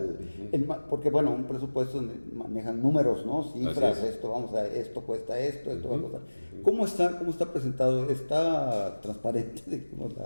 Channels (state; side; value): inverted; both; correlation -1.00